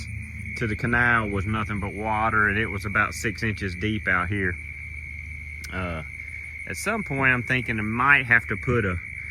to the canal was nothing but water, and it was about 6 inches deep out here. At some point, I'm thinking I might have to put a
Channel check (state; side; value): identical; both; correlation 1.00